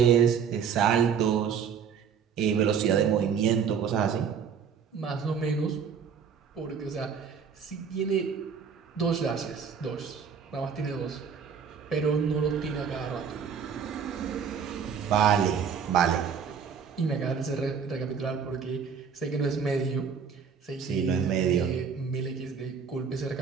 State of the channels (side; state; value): left; quieter; 6.8 dB